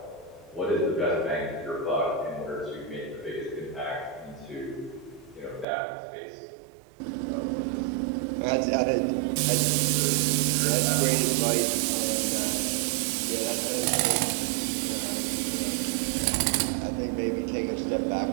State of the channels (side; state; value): left; drops out; at 5.7 s